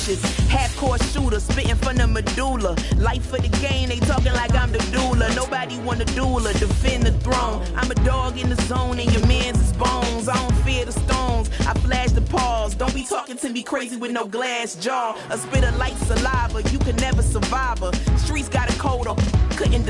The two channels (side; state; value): both; identical; correlation 1.00